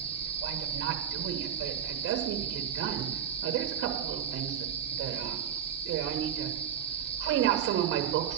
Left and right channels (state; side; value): quieter; left; 9.2 dB